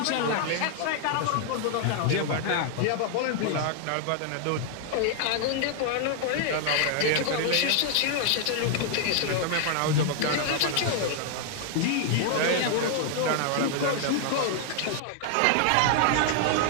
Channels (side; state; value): both; different; correlation 0.00